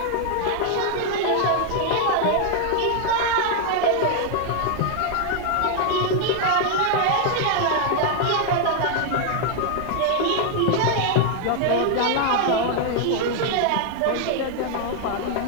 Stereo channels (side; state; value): both; different; correlation 0.00